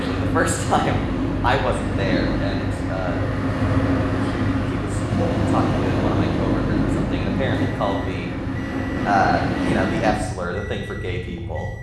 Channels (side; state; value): both; identical; correlation 1.00